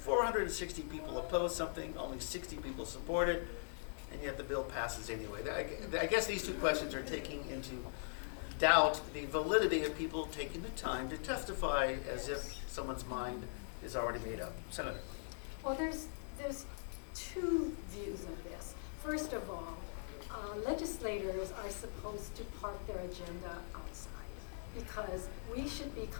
people oppose something, only 60 people support it, and yet the bill passes anyway. I guess these two questions are taking into doubt the validity of people taking the time to testify as if someone's mind is already made up. Senator. Well, there's two views of this. First of all, legislators are supposed to park their agenda outside because we should be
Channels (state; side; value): silent; right; digital silence